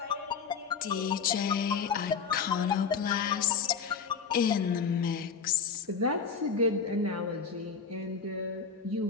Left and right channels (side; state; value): right; quieter; 5.9 dB